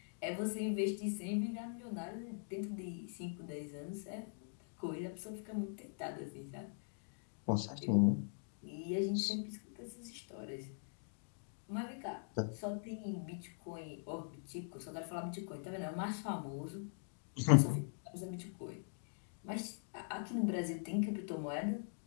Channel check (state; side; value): silent; right; digital silence